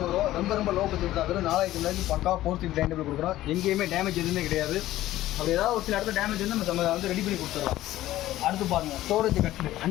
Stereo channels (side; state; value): right; quieter; 14.9 dB